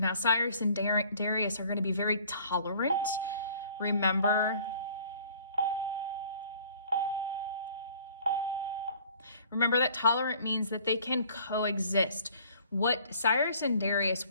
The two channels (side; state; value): both; inverted; correlation -0.53